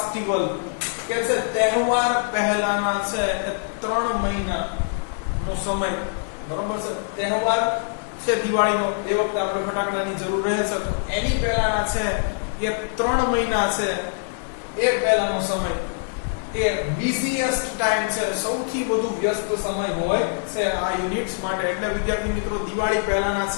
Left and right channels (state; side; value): silent; right; digital silence